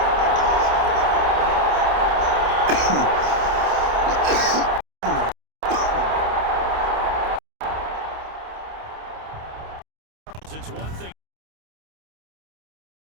It's one thing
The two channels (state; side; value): late; left; 28 ms